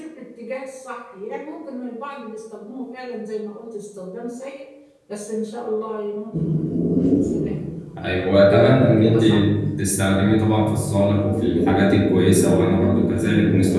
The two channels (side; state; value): both; identical; correlation 1.00